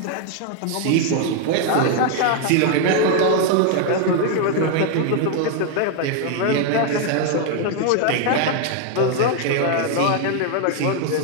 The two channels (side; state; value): both; different; correlation 0.00